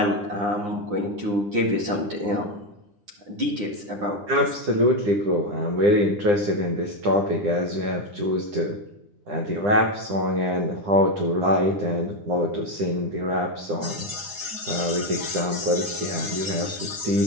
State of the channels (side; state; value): left; late; 9.9 ms